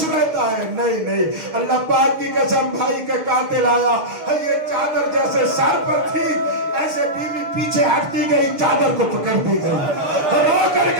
رہتا ہے؟ نہیں نہیں. اللہ پاک کی قسم بھائی کا قاتل آیا, یہ چادر جیسے سر پر تھی ایسے بیوی پیچھے ہٹتی گئی, چادر کو پکڑتی گئی, رو کر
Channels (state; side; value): late; left; 6.7 ms